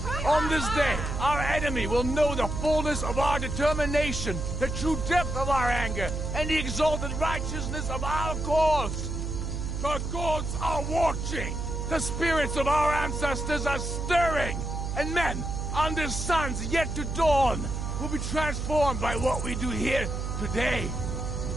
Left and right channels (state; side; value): noise; right; hum, 3 dB below the sound